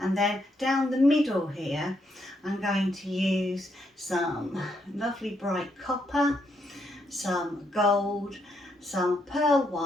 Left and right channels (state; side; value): normal; both; correlation 0.77